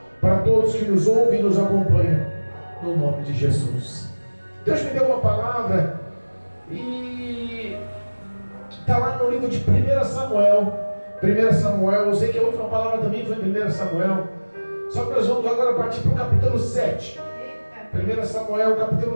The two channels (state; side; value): inverted; both; correlation -1.00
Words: para todos que nos ouvem e nos acompanham, no nome de Jesus. Deus me deu uma palavra e está lá no livro de 1 Samuel. 1 Samuel, eu sei que a última palavra também foi em 1 Samuel, só que nós vamos agora partir para o capítulo 7. 1 Samuel, capítulo